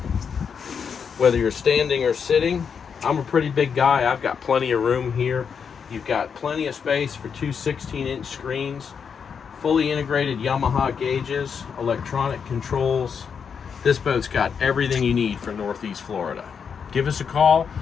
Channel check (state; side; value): quieter; right; 6.6 dB